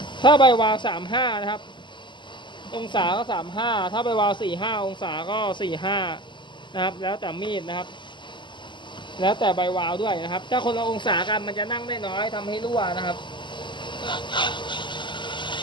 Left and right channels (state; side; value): late; right; 0.23 ms